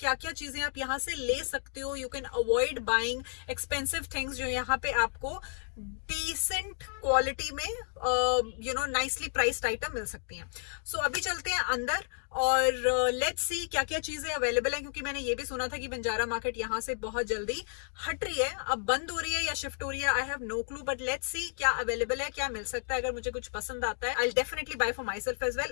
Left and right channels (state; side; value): silent; right; digital silence